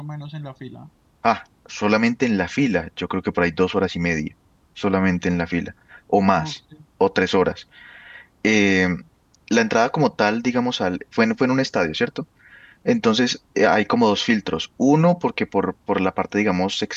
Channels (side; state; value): both; identical; correlation 1.00